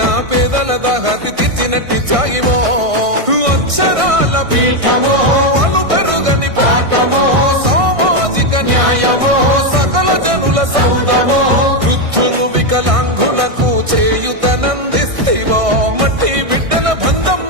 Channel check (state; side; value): late; left; 1.6 ms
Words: పేదల దాహాతి తీర్చినట్టి త్యాగివో అక్షరాల పీఠమో వాళ్ళు పెరుగని పాఠమో సామాజిక న్యాయమో సకల జనుల సౌదమో వృద్ధులు వికలాంగులకు చేయుతనందిస్తివో మట్టి బిడ్డల బంధం